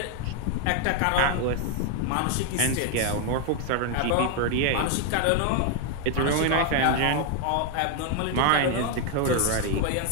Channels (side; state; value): both; different; correlation 0.01